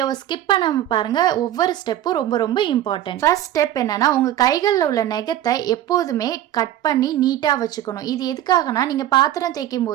ஸ்கிப் பண்ணாம பாருங்க. ஒவ்வொரு ஸ்டெப்பும் ரொம்ப ரொம்ப இம்பார்ட்டன்ட். ஃபர்ஸ்ட் ஸ்டெப் என்னன்னா, உங்கள் கைகளில் உள்ள நெகத்தை எப்போதுமே கட் பண்ணி நீட்டாக வச்சுக்கணும். இது எதுக்காகனா, நீங்கள் பாத்திரம் தேய்க்கும்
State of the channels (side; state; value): left; quieter; 12.5 dB